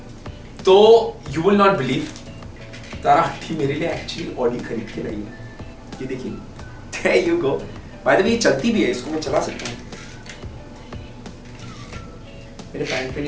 तो you will not believe, Tara aunty मेरे लिए एक्चुअली ऑडी खरीद के लाई है, ये देखिए, there you go. By the way ये चलती भी है, इसको मैं चला सकता हूँ, मेरे पैंट पे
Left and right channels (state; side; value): identical; both; correlation 1.00